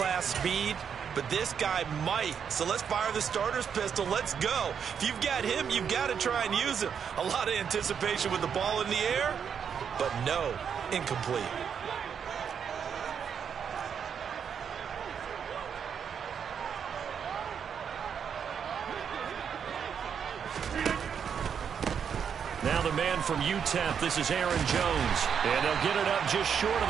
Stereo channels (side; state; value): left; quieter; 7.4 dB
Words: speed, but this guy might. So let's fire the starter's pistol. Let's go. If you've got him, you've got to try and use him. A lot of anticipation with the ball in the air, but no, incomplete. Now the man from UTEP, this is Aaron Jones. And they'll get it up just short of